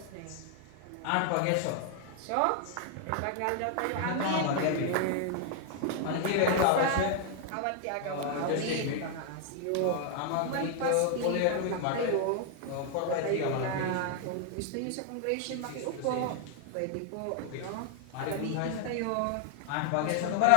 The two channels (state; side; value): different; both; correlation 0.00